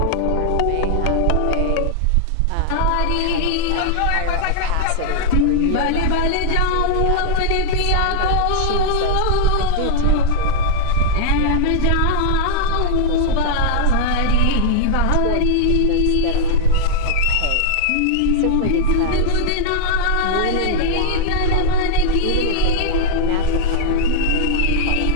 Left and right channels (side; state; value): both; different; correlation 0.00